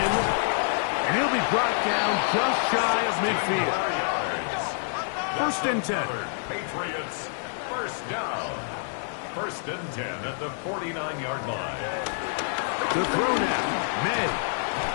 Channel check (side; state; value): right; silent; 60 dB below the other